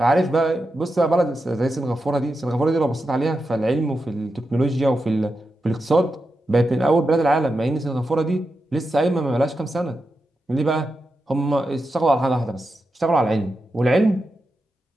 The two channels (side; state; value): both; normal; correlation 0.89